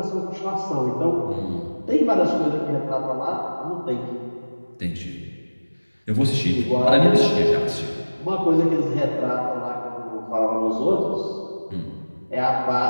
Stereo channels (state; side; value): inverted; both; correlation -1.00